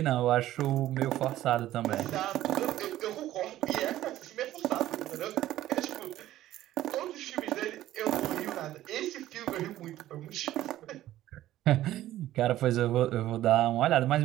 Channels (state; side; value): quieter; left; 14.0 dB